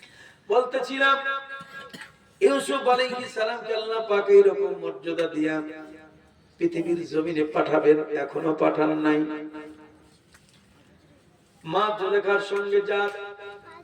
বলতেছিলাম ইউসুফ আলাইহিস সালামকে আল্লাহ পাক এরকম মর্যাদা দিয়া পৃথিবীর জমিনে পাঠাবেন, এখনো পাঠান নাই। মা জুলেখার সঙ্গে যার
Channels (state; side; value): identical; both; correlation 1.00